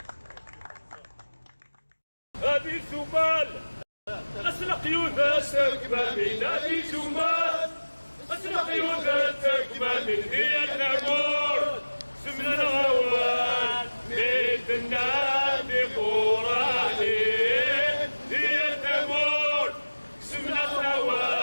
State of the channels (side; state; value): both; inverted; correlation -1.00